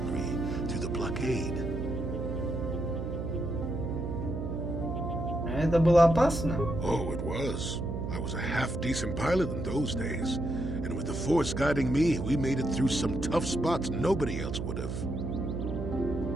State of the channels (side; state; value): right; noise; hum, 4 dB below the sound